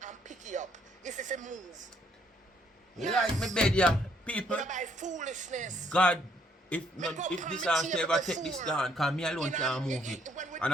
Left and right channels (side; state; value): both; normal; correlation 0.68